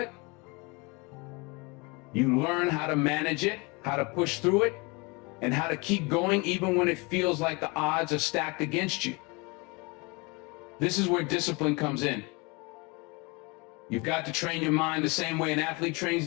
You learn how to manage it, how to push through it, and how to keep going even when it feels like the odds are stacked against you. This is where discipline comes in. You've got to train your mind the same way an athlete trains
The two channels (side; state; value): right; quieter; 27.9 dB